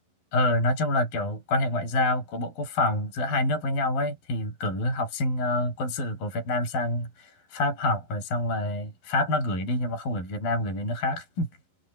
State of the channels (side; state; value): right; late; 11 ms